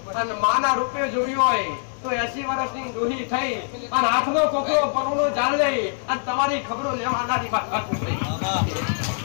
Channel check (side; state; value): right; silent; digital silence